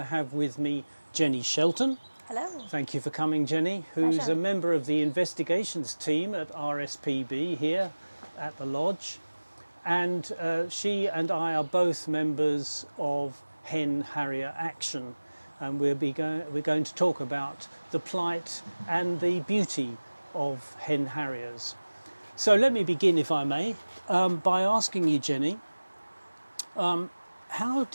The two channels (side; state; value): both; inverted; correlation -1.00